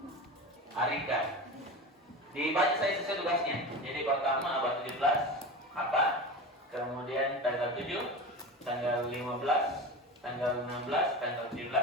Arikan. Dibaca saya sesuai tugasnya. Jadi pertama abad 17 apa? Kemudian tanggal 7, tanggal 15, tanggal 16, tanggal 17.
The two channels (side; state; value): both; normal; correlation 0.28